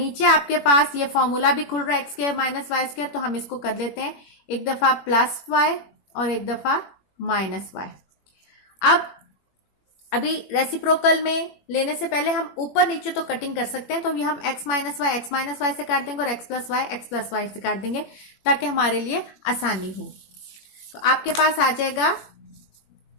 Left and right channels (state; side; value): late; right; 21 ms